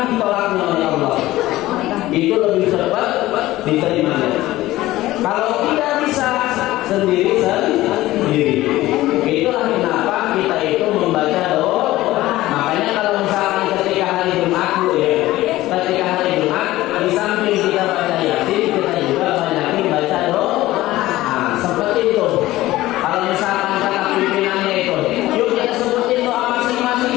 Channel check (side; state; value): right; quieter; 16.7 dB